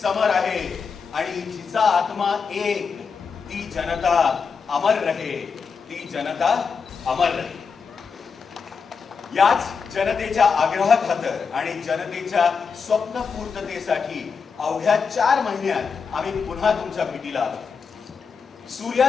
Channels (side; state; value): right; quieter; 5.7 dB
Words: आहे आणि जिचा आत्मा एक, ती जनता अमर रहे, ती जनता अमर रहे. याच जनतेच्या आग्रहाखातर आणि जनतेच्या स्वप्नपूर्ततेसाठी अवघ्या 4 महिन्यात आम्ही पुन्हा तुमच्या भेटीला आलो.